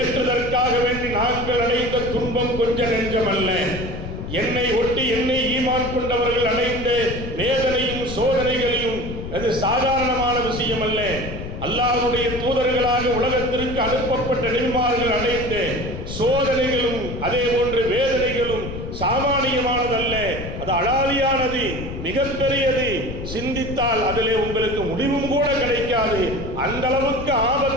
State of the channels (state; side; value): noise; left; rumble, 8 dB below the sound